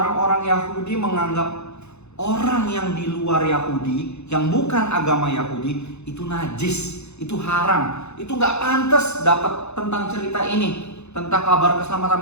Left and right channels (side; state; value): right; late; 0.81 ms